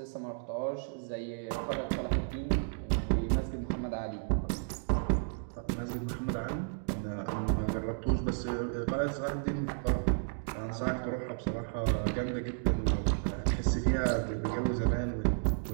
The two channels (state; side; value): silent; left; digital silence